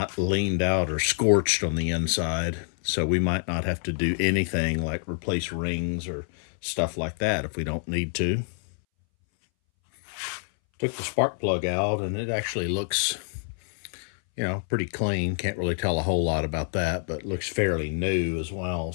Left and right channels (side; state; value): right; silent; 60 dB below the other